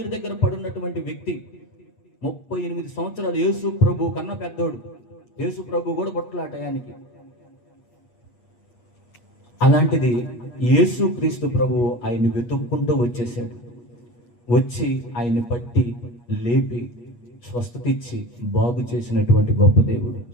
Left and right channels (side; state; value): right; late; 8.4 ms